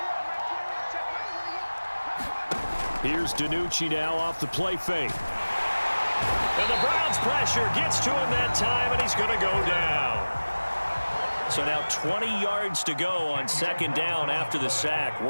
Here's DiNucci now off the play fake. And the Browns pressure gets to him that time, and he's going to go down. So now 20 yards to go on 2nd down after the sack.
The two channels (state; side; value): inverted; both; correlation -1.00